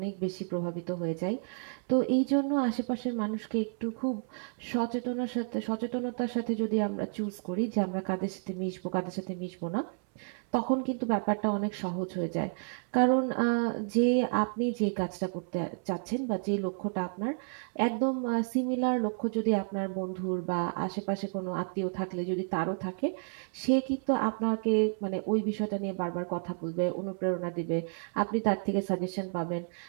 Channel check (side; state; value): left; silent; 57 dB below the other